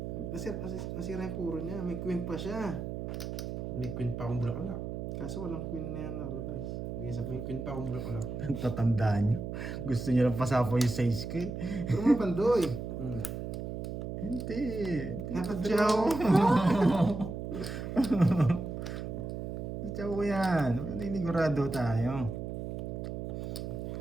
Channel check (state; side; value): noise; right; hum, 5 dB below the sound